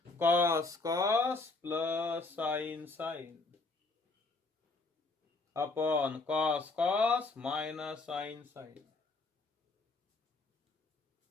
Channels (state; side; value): quieter; right; 3.6 dB